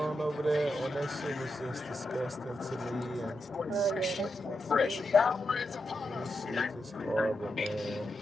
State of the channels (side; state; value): both; normal; correlation 0.86